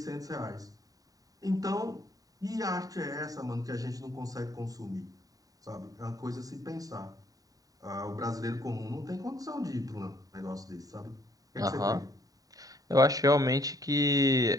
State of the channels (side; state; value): left; late; 0.18 ms